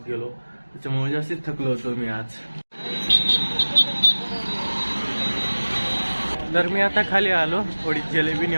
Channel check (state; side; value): inverted; both; correlation -1.00